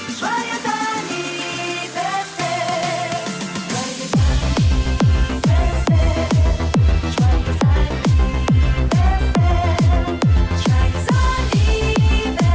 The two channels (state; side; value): identical; both; correlation 1.00